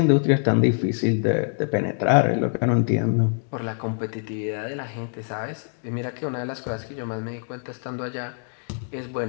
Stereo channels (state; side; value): silent; right; digital silence